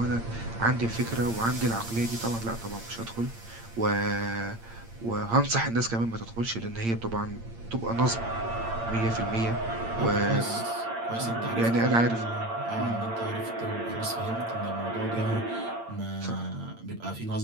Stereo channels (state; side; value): late; left; 8.8 ms